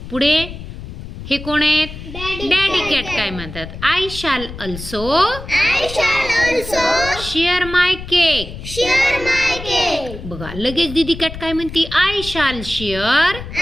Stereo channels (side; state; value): left; noise; rumble, 11 dB below the sound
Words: पुढे हे कोण आहेत? डॅडी कॅट काय म्हणतात? आय शाल अल्सो शेअर माय केक. बघा लगेच दीदी कॅट काय म्हणते? आय शाल शेअर